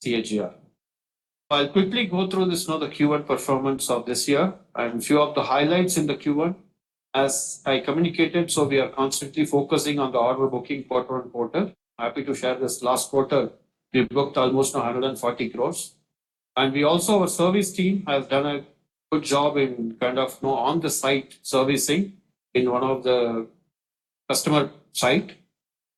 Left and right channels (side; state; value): both; identical; correlation 1.00